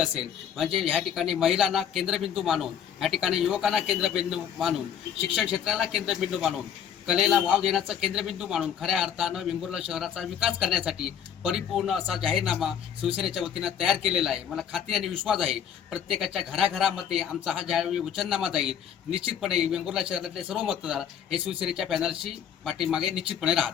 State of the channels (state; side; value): quieter; right; 8.7 dB